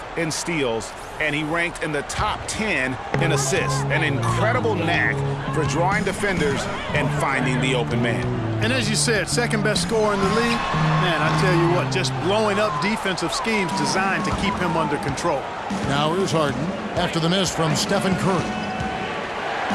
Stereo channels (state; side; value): identical; both; correlation 1.00